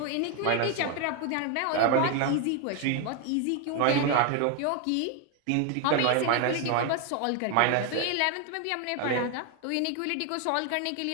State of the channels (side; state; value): both; different; correlation 0.01